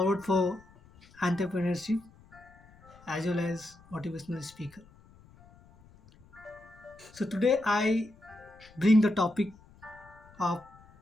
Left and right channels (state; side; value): noise; left; rumble, 25 dB below the sound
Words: for entrepreneurship as well as motivational speaker. So today I bring the topic of